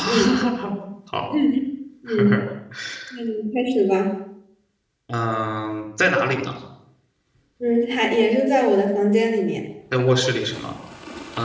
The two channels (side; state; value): both; identical; correlation 1.00